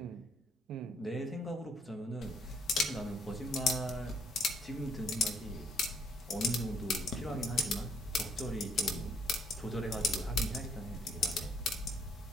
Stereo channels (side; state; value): both; normal; correlation 0.67